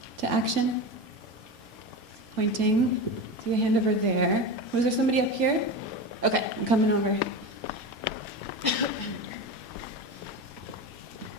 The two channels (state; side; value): normal; both; correlation 0.23